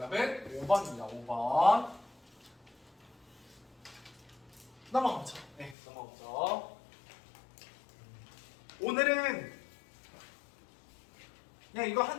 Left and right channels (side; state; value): right; drops out; at 5.8 s